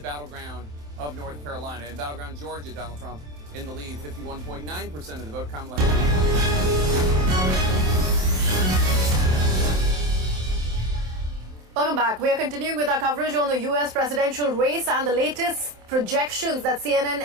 of North Carolina. In battleground Georgia, Donald Trump in the lead, 51.9% of the vote. Kamala Welcome back. We are continuing with our coverage on the US presidential race, and the latest projections that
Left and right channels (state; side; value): late; left; 27 ms